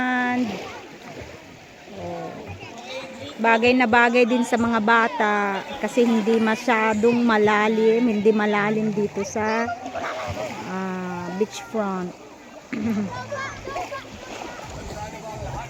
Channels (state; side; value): identical; both; correlation 1.00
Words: Oh. Bagay na bagay din sa mga bata kasi hindi masyadong malalim, hindi malalim dito sa beachfront.